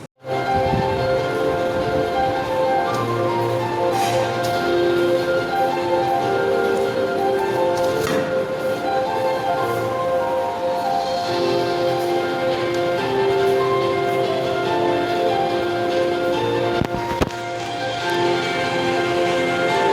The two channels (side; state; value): both; identical; correlation 1.00